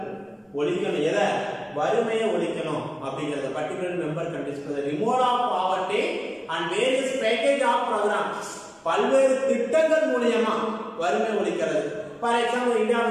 ஒழிக்கணும். எதை? வறுமையை ஒழிக்கணும் அப்படிங்கிறது. Particular member condition. The removal of poverty and various package of programs, பல்வேறு திட்டங்கள் மூலமா வறுமை ஒழிக்கிறது. For example, India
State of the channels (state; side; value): identical; both; correlation 1.00